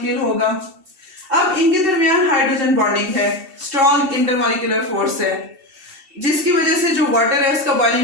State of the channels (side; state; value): left; late; 2.7 ms